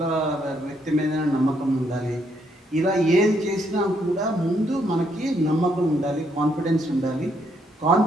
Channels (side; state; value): both; normal; correlation 0.73